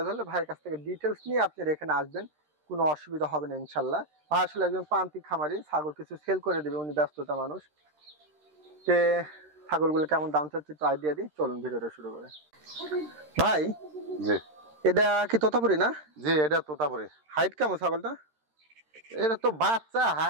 হলে ভাইয়ের কাছ থেকে ডিটেলস নিয়ে আপনারা এখানে আসবেন, কোনো অসুবিধা হবে না ইনশাল্লাহ। ভাই আসলে একজন প্রান্তিক খামারি, ছাগল কিছু সেল করে দেবে, উনি ব্যস্ততা মানুষ। তে ছাগলগুলো কেমন দাম চাচ্ছে একটু আইডিয়া দিই, চলুন ভিডিওটা শুরু করে। ভাই জি এটা কি তোতাপুরি না? জি, এটা তোতাপুরি। হাইট কেমন ছাগলটা? এটা তো বাচ্চা,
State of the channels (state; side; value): late; left; 13 ms